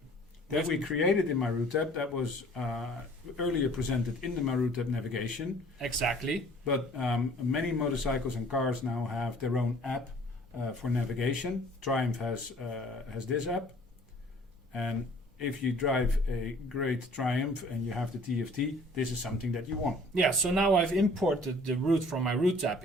That we created in MyRoute-app. That was earlier presented in the MyRoute-app navigation. Exactly. But many motorcycles and cars now have their own app for navigation. Triumph has this app. And if you drive a great Triumph and you have the TFT, this is something that you want. Yeah, so now I've imported the route from my Route app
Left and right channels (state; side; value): normal; both; correlation 0.53